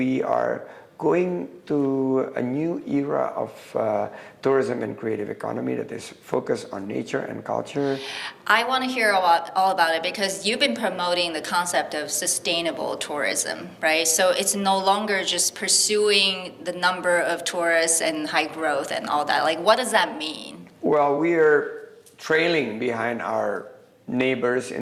are going to a new era of tourism and creative economy that is focused on nature and culture. I want to hear all about it because you've been promoting the concept of sustainable tourism, right? So it's no longer just pursuing the number of tourists and high growth and all that. Like, what does that mean? Well, we are trailing behind our neighbors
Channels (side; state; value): both; identical; correlation 1.00